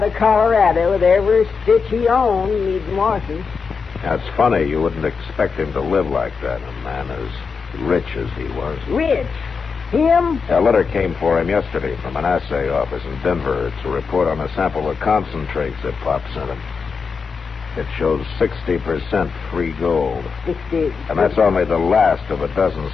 of Colorado with every stitch he owned needing washing. That's funny. You wouldn't expect him to live like that, a man as rich as he was. Rich? Him? A letter came for him yesterday from an assay office in Denver. It's a report on a sample of concentrates that Pop sent him. It shows 60% free gold. 60. And that's only the last of a dozen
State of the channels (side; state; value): right; quieter; 5.4 dB